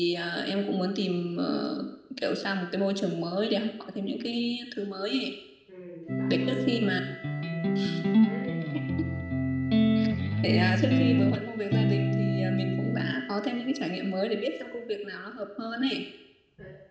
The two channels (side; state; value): both; identical; correlation 1.00